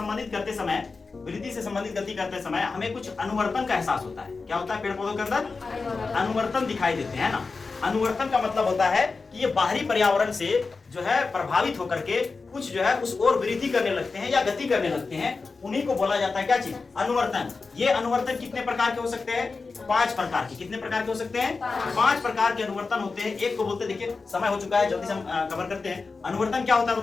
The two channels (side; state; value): right; quieter; 4.3 dB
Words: करते समय, वृद्धि से संबंधित गति करते समय हमें कुछ अनुवर्तन का एहसास होता है। क्या होता है, पेड़ पौधों के अंदर अनुवर्तन दिखाई देते हैं ना। अनुवर्तन का मतलब होता है कि ये बाहरी पर्यावरण से जो है प्रभावित होकर के कुछ जो है उस ओर वृद्धि करने लगते हैं या गति करने लगते हैं, उन्हीं को बोला जाता है क्या चीज, अनुवर्तन। ये अनुवर्तन कितने प्रकार के हो सकते हैं, 5 प्रकार के। कितने प्रकार के हो सकते हैं, 5 प्रकार के अनुवर्तन होते हैं। एक को बोलते हैं, देखिए समय हो चुका है, जल्दी से हम कवर करते हैं। अनुवर्तन क्या होता है